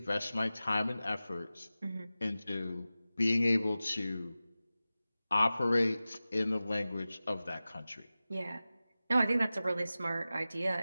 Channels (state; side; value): inverted; both; correlation -0.96